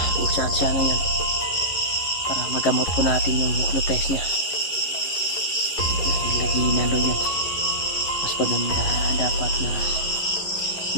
saan siya ngayon para magamot po natin yung hypnotize niya. Dahil naginalo yan, mas maganda dapat na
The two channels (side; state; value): right; late; 11 ms